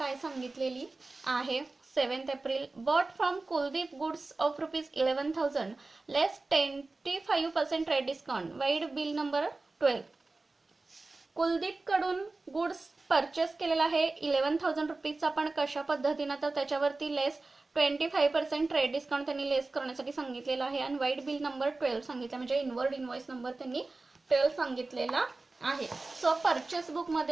सांगितलेली आहे. 7 April bought from Kuldeep goods of ₹11,000 less 25% trade discount vide bill number 12. कुलदीपकडून गुड्स परचेस केलेला आहे 11,000 रुपीजचा. पण कशा पद्धतीनं तर त्याच्यावरती लेस 25% ट्रेड डिस्काउंट त्यांनी लेस करण्यासाठी सांगितलेला आहे आणि वाईड बिल नंबर 12 सांगितलं म्हणजे इनवर्ड इनव्हॉइस नंबर त्यांनी 12 सांगितलेला आहे. सो परचेस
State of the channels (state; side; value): quieter; left; 3.4 dB